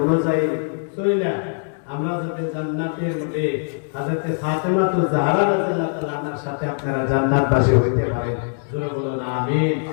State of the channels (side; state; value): right; silent; 64 dB below the other